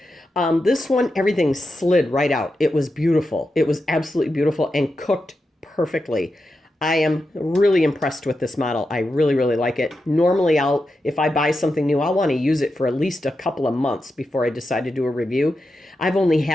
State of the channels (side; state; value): both; normal; correlation 0.88